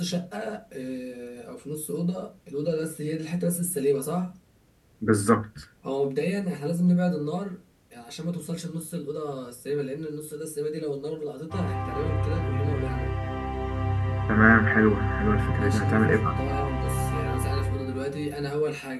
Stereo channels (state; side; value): identical; both; correlation 1.00